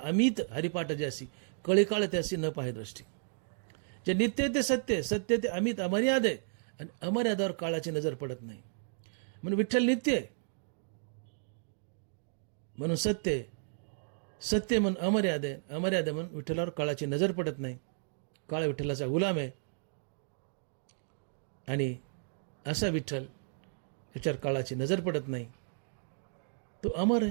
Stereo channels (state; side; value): silent; left; digital silence